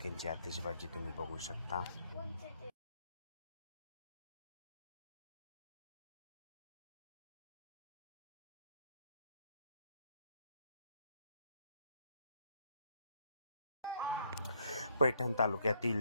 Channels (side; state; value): both; inverted; correlation -0.70